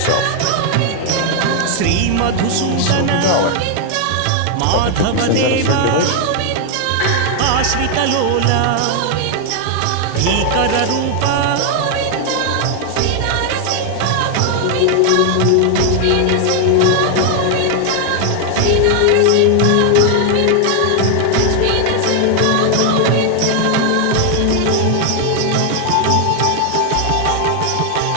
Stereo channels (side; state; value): both; different; correlation 0.00